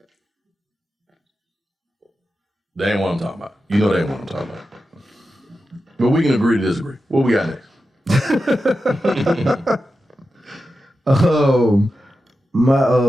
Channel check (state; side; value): normal; both; correlation 0.91